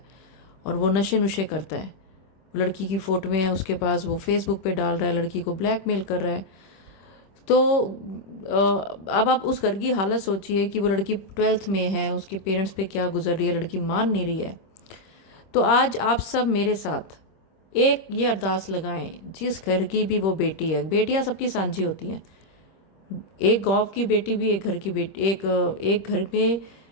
और वो नशे नुशे करता है। लड़की की फोटो में है उसके पास, वो फेसबुक पे डाल रहा है, लड़की को ब्लैकमेल कर रहा है। तो अब आप उस घर की हालत सोचिए कि वो लड़की 12th में है, उसके पेरेंट्स पे क्या गुजर रही है, लड़की मान नहीं रही है। तो आज आप सब मेरे साथ एक ये अरदास लगाएं, जिस घर की भी वो बेटी है, बेटियां सबकी सांझी होती हैं, एक गांव की बेटी भी एक घर की बेटी, एक घर में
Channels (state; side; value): late; right; 26 ms